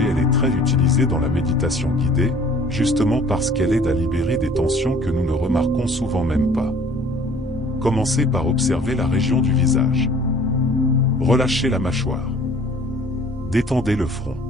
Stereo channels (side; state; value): both; normal; correlation 0.52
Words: elle est très utilisée dans la méditation guidée, justement parce qu'elle aide à libérer des tensions que nous ne remarquons souvent même pas. Commencez par observer la région du visage. Relâchez la mâchoire. Détendez le front.